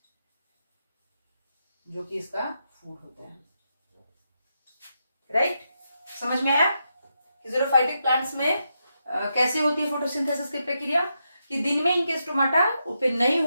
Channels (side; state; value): both; inverted; correlation -0.84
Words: जो कि इसका फूड होता है, राइट। समझ में आया कि ज़ीरोफाइटिक प्लांट्स में कैसे होती है फोटोसिंथेसिस की प्रक्रिया, कि दिन में इनके स्टोमाटा ओपन नहीं